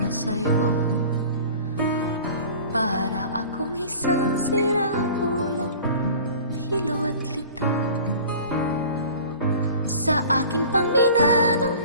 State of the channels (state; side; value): inverted; both; correlation -0.42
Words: sa'yo. Para akong isang siraulo, hilo at lito. Sa akin pang mina ng